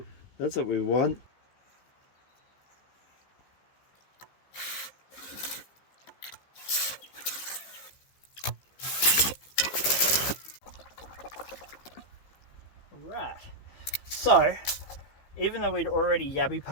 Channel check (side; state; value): right; late; 15 ms